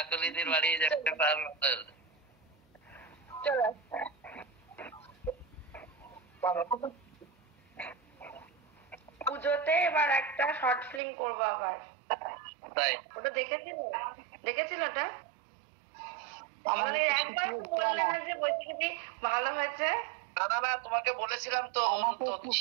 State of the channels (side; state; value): left; drops out; at 11.0 s